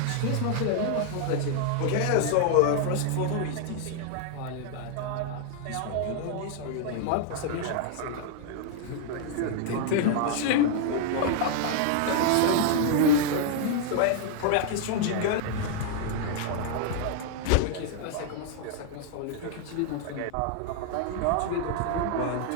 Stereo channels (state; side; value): different; both; correlation 0.00